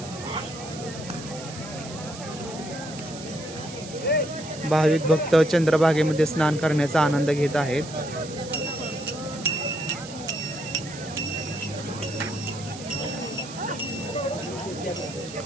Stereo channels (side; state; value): right; noise; hiss, 14 dB below the sound